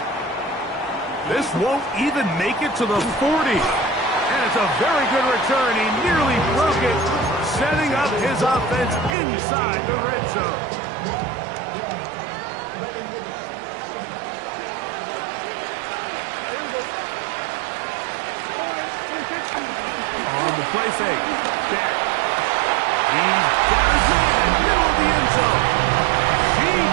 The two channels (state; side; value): drops out; left; at 9.2 s